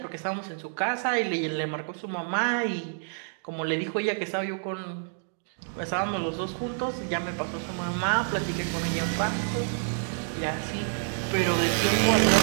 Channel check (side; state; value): left; silent; 59 dB below the other